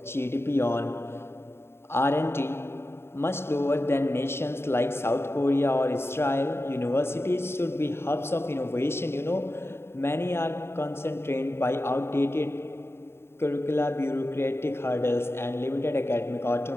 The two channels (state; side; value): late; right; 0.12 ms